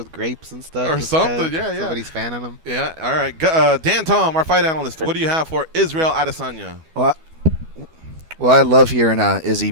grapes and stuff. Or something, yeah. Somebody's fanning him. Yeah, all right. Dan Tom, our fight analyst, what do you have for Israel Adesanya? Well, I love hearing Izzy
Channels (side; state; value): left; late; 12 ms